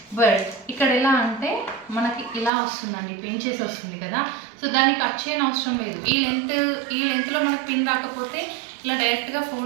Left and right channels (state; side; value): drops out; left; at 2.5 s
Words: బట్ ఇక్కడ ఎలా అంటే మనకి ఇలా వస్తుందండి, పిన్ చేసి వస్తుంది కదా. సో దాన్ని కట్ చేయని అవసరం లేదు. ఈ లెంత్లో మనకి పిన్ రాకపోతే ఇలా డైరెక్ట్గా